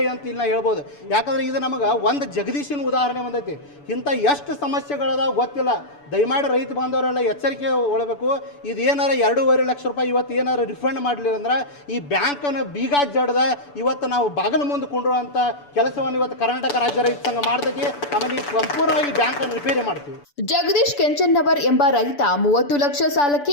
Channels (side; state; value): right; late; 6.9 ms